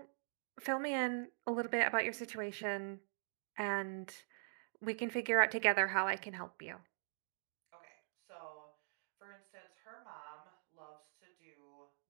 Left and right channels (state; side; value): silent; left; digital silence